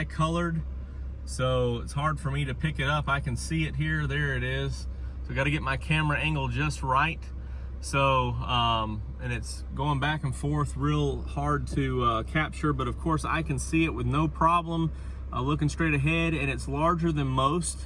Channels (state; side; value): identical; both; correlation 1.00